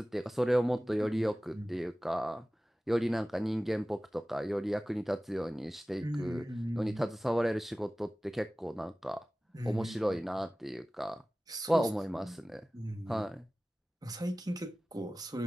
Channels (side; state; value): both; normal; correlation 0.97